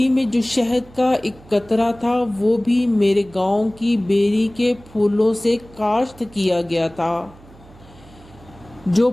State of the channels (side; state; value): right; noise; hum, 23 dB below the sound